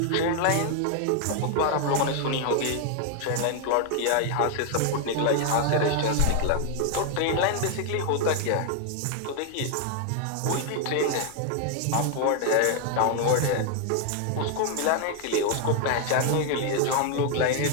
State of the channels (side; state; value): both; different; correlation 0.00